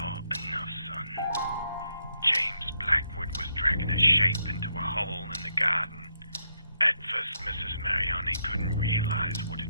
enough, son. James Blackwood was dragging a shape into a hole in the garden. At first, Mrs. Mariani couldn't realize what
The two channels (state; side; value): inverted; both; correlation -0.78